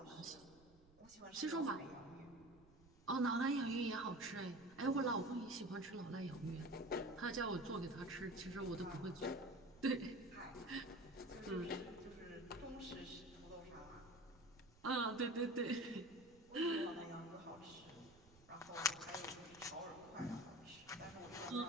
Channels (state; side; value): noise; right; rumble, 25 dB below the sound